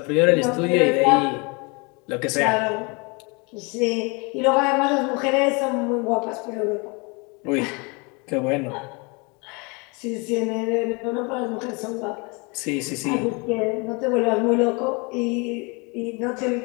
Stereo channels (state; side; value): quieter; right; 30.0 dB